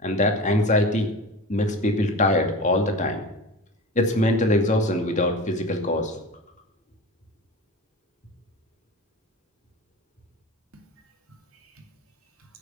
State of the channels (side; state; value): both; normal; correlation 0.32